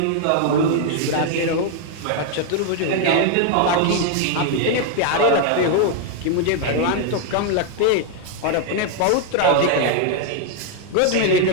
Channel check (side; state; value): both; different; correlation 0.00